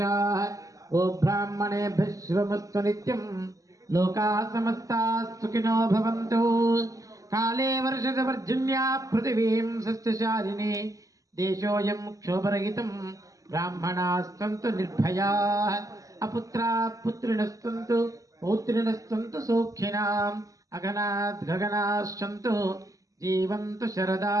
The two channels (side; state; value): left; late; 0.16 ms